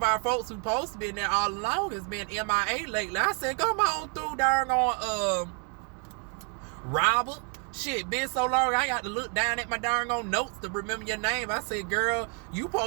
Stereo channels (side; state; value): left; quieter; 38.3 dB